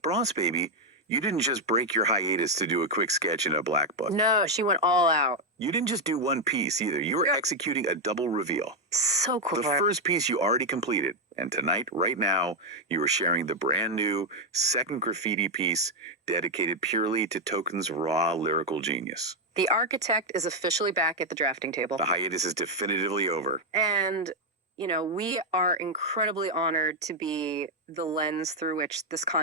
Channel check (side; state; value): both; normal; correlation 0.02